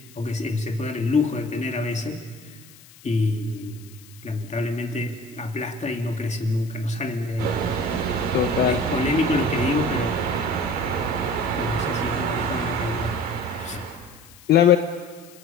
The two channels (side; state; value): left; noise; hiss, 23 dB below the sound